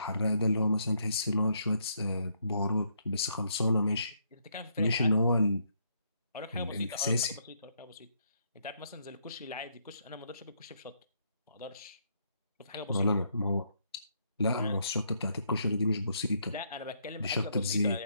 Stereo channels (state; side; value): inverted; both; correlation -0.74